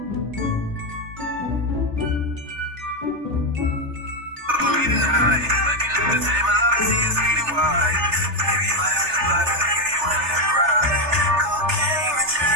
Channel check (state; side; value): late; left; 3.3 ms